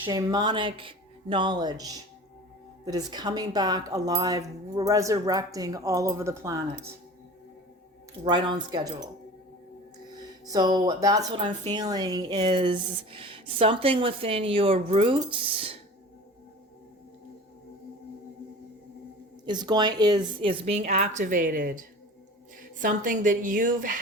knowledge that is coming back alive, resurrecting all over the planet. Right on schedule. So that's what I'm feeling, is something within your roots is being activated. Something that you've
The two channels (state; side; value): normal; both; correlation 0.39